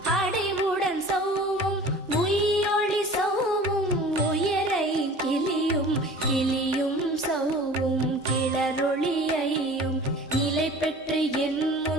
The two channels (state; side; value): normal; both; correlation 0.43